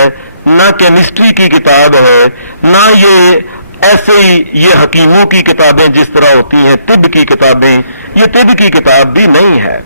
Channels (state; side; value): inverted; both; correlation -0.72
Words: نہ کیمسٹری کی کتاب ہے، نہ یہ ایسے ہی یہ حکیموں کی کتابیں جس طرح ہوتی ہیں، طب کی کتابیں، یہ طب کی کتاب بھی نہیں ہے.